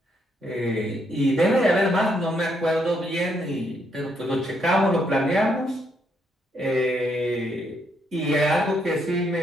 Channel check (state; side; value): normal; both; correlation 0.75